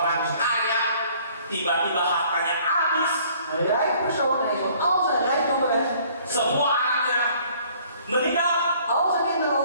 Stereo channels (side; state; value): both; inverted; correlation -0.57